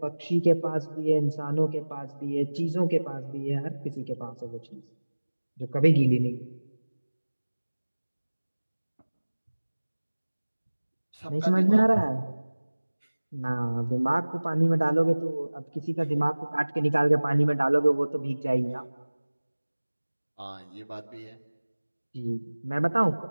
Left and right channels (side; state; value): both; inverted; correlation -1.00